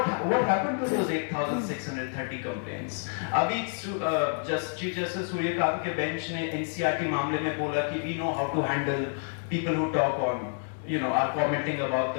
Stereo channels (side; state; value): right; silent; 59 dB below the other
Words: happened to those 8,630 complaints? अभी Chief Justice सूर्यकांत के बेंच ने NCRT मामले में बोला कि we know how to handle people who talk on, are commenting about